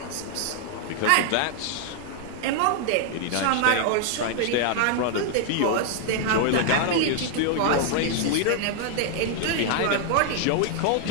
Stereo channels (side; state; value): both; different; correlation 0.00